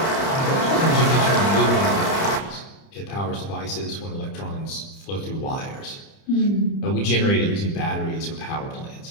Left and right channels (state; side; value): late; right; 30 ms